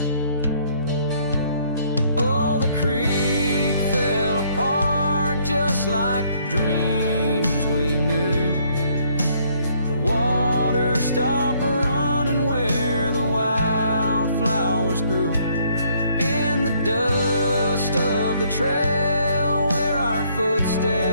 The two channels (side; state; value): both; inverted; correlation -0.66